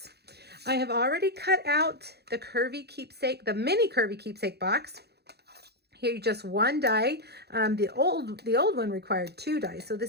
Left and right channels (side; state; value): left; late; 0.48 ms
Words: I have already cut out the Curvy Keepsake, the mini Curvy Keepsake box. Here, just one die. The old one required 2 dies, so